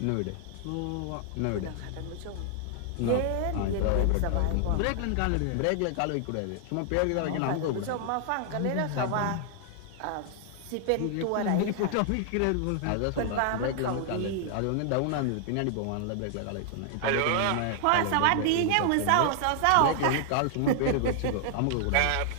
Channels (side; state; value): both; different; correlation 0.00